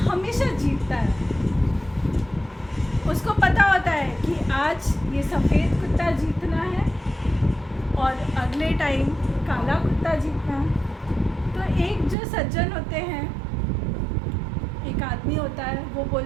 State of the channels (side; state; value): left; drops out; at 12.2 s